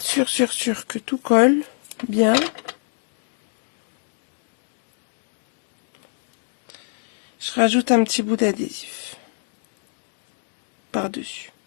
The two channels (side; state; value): right; silent; digital silence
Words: sûr que tout colle bien, je rajoute un petit bout d'adhésif par-dessus.